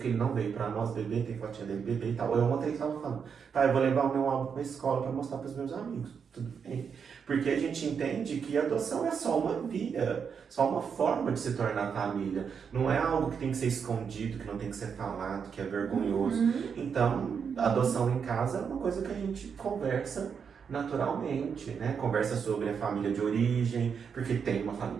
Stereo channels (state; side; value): quieter; left; 6.6 dB